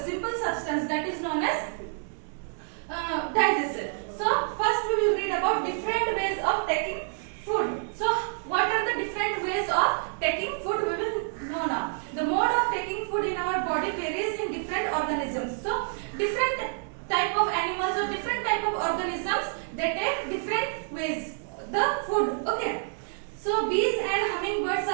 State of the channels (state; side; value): silent; left; digital silence